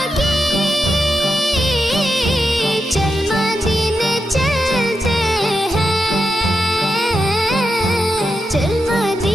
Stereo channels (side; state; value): both; normal; correlation 0.87